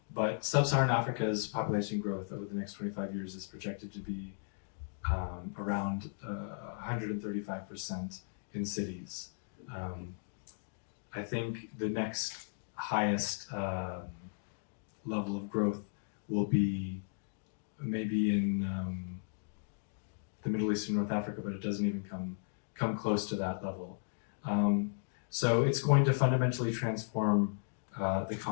But sub-Saharan Africa's population growth over the next 25 years is projected to be around 135% in cities. I think the next highest level of growth will be maybe in the Middle East and North Africa, but it doesn't even come close to that level. So it's going to fundamentally transform the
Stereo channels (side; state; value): right; silent; digital silence